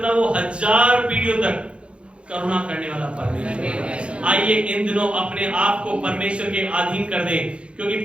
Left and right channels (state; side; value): late; left; 0.058 ms